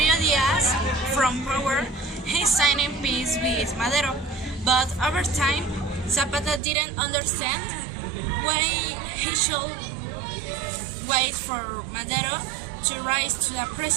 Diaz from power, he signed peace with Madero, but over time, Zapata didn't understand why he should wait for Madero to rise to the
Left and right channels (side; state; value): left; drops out; at 6.6 s